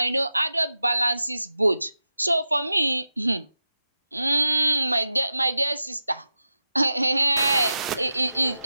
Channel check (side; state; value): both; inverted; correlation -0.92